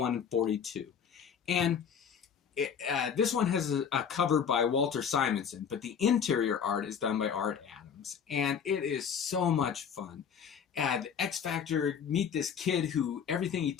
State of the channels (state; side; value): quieter; right; 7.4 dB